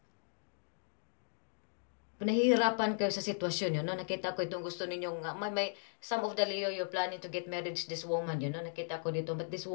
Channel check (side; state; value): right; silent; digital silence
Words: nahihirapan kayo sa sitwasyon, Nakita ko itong gusto ninyong, may some of the Leo, you're planning to get married to this woman, Nakita ko dito, but this